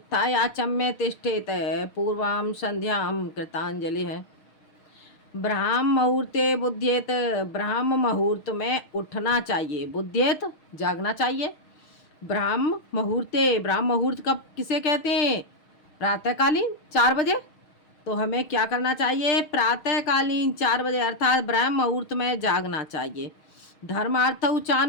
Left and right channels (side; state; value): right; late; 6.4 ms